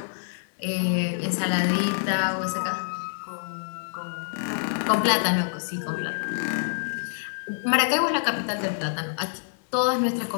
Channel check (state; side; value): silent; right; digital silence